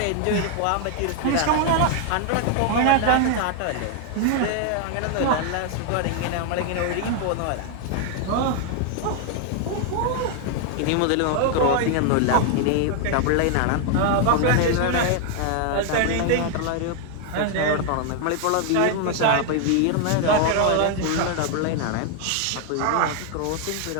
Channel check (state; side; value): different; both; correlation 0.00